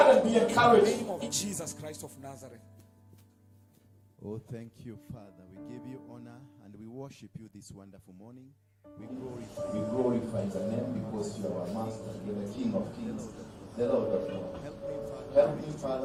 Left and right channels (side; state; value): both; identical; correlation 1.00